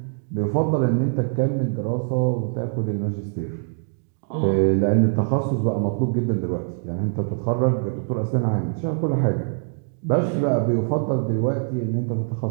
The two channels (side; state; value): left; silent; digital silence